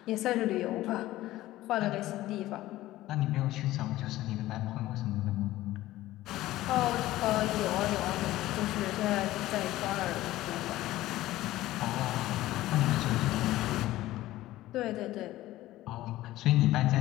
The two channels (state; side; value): quieter; right; 16.0 dB